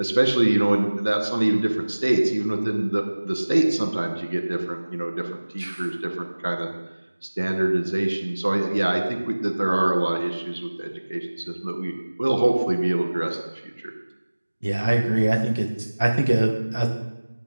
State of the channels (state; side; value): inverted; both; correlation -1.00